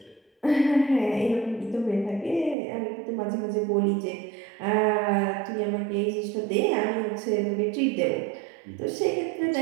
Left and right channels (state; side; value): drops out; left; at 2.6 s